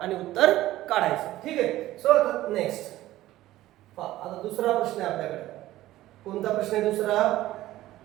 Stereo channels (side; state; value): left; quieter; 15.4 dB